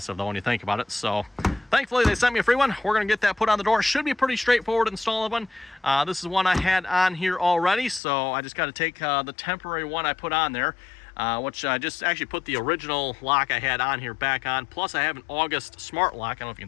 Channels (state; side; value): drops out; right; at 8.0 s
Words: though when you think about it. So thankfully they sent me a free one. We're going to get that put on the door. Should be pretty straightforward install one. This is one I had on here already, so I just got to take the temporary one I put on there, which I just actually put the original lock I had on here back on. Plus I have an August smart lock. I don't know if you